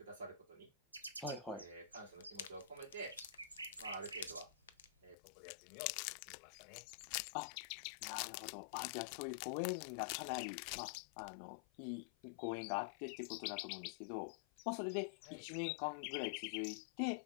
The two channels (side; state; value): right; drops out; at 5.2 s